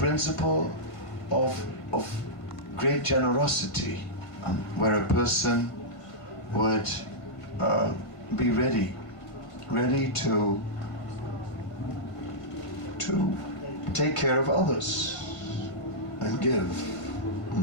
of great generosity, where a person would be ready to take care of others and give.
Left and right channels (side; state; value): right; late; 1.5 ms